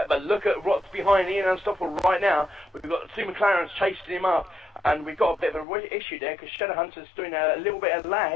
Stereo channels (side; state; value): right; drops out; at 5.7 s